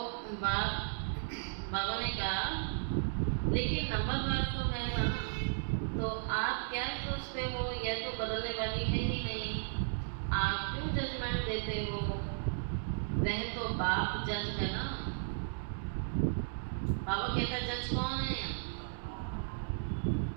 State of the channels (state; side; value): silent; left; digital silence